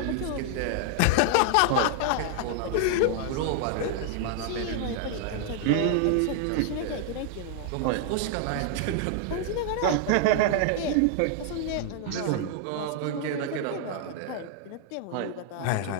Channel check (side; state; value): both; different; correlation 0.00